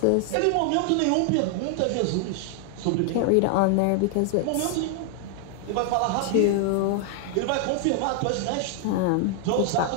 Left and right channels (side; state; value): both; different; correlation 0.00